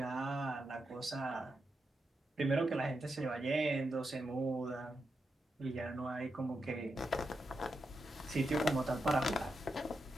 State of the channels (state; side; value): normal; both; correlation 0.86